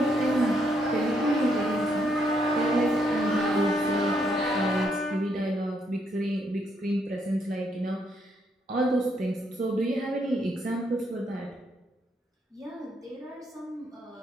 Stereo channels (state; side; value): normal; both; correlation 0.75